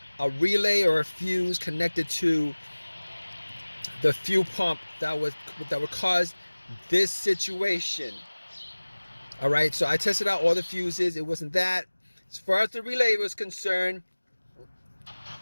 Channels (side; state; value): both; inverted; correlation -1.00